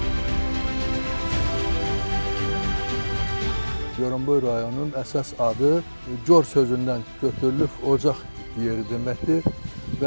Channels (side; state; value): both; inverted; correlation -1.00